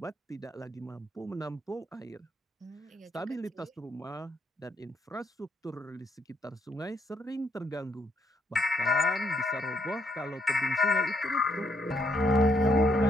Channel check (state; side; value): normal; both; correlation 0.73